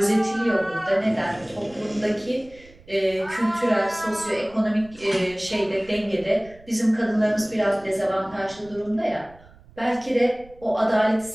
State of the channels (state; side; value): noise; right; rumble, 24 dB below the sound